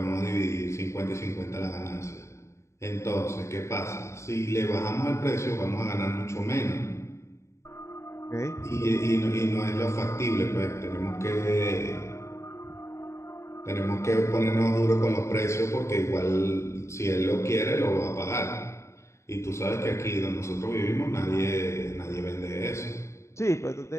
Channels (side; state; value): right; late; 0.14 ms